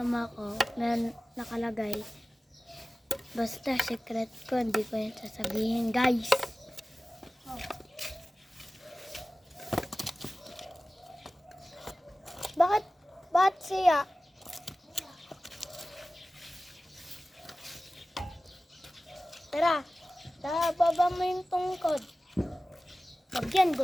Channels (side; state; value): both; normal; correlation 0.96